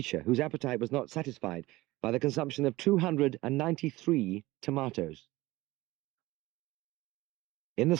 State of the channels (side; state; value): left; quieter; 19.1 dB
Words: whose appetite was not satisfied by the consumption of 293 tomatoes. In the